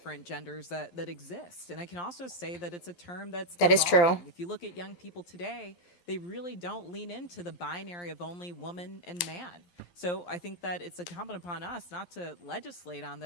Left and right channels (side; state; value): right; late; 11 ms